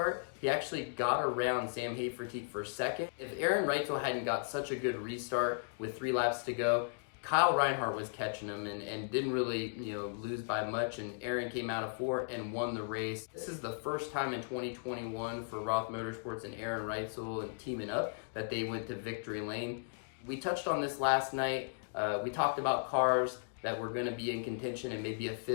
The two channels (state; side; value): silent; right; digital silence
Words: he actually got around Sam Hafertepe for second. If Aaron Reitzel hadn't got such a good restart with 3 laps to go, Kyle Reinhardt was catching him and didn't really lose by much, and Aaron came out of 4 and won the race. This is the first time in 2021 for Roth Motorsports and Aaron Reitzel and teaming up that they went to victory lane. We touched on this last night. We talked about cars that were going to be in contention and maybe a